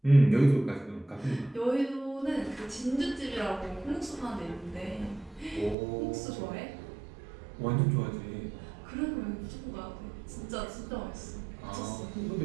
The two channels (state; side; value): drops out; left; at 5.8 s